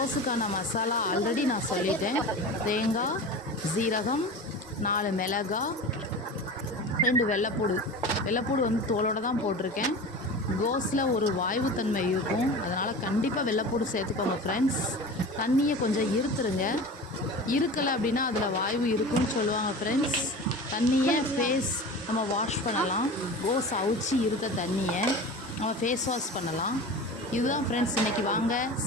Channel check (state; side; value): normal; both; correlation 0.33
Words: மசாலா ஆல்ரெடி நான் சொல்லிட்டேன். தேங்காய், ஜீரகம், 4 மிளகாய், 2 வெள்ளைப்பூடு தோலோடு தான் போட்டிருக்கேன். கோஸில் ஒரு வாய்வுத்தன்மை இருக்கும், அதனால் கண்டிப்பாக வெள்ளைப்பூடு சேர்த்துக்கோங்க ஃப்ரெண்ட்ஸ். தண்ணியை கொஞ்சம் இருத்துருங்க. இருக்கலை அப்படின்னா அதில் வாய்வு இருக்குன்னு சொல்லுவாங்க ஃப்ரெண்ட்ஸ். தண்ணியை நம்ம வாஷ் பண்ணலாம். கோஸ் அவிச்சு இருத்த தண்ணியை நம்ம ஃபேஸ் வாஷ் பண்ணலாம். இதுதான் ஃப்ரெண்ட்ஸ், இன்றைக்கி வாங்க